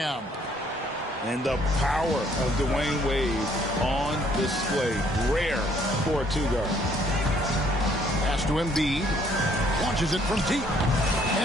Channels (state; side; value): normal; both; correlation 0.64